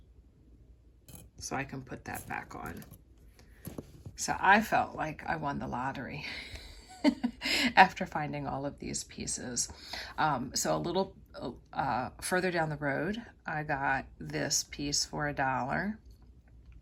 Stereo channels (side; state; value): both; identical; correlation 1.00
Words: so I can put that back on. So I felt like I won the lottery after finding all of these pieces. So a little further down the road, I got this piece for $1.